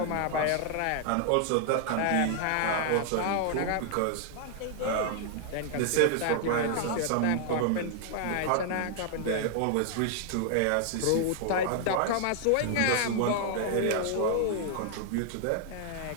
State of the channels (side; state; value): both; different; correlation 0.00